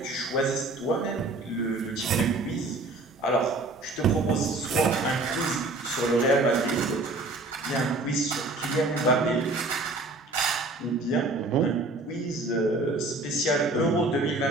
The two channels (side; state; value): left; quieter; 3.0 dB